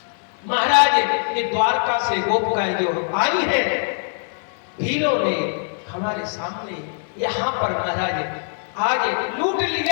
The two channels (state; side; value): silent; right; 64 dB below the other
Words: महाराज ये द्वारका से गोपिकाएं जो आई है, भीलों ने हमारे सामने यहाँ पर महाराज आज लूट